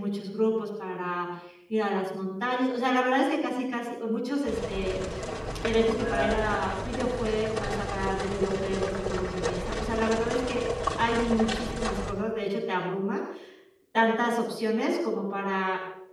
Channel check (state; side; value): identical; both; correlation 1.00